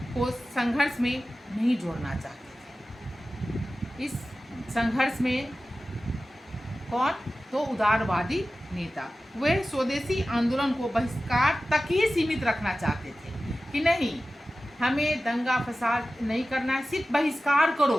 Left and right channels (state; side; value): normal; both; correlation 0.95